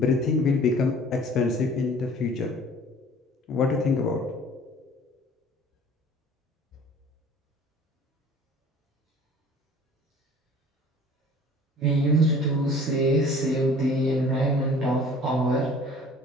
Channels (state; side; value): normal; both; correlation 0.48